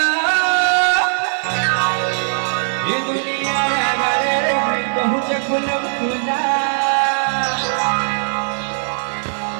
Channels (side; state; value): left; silent; digital silence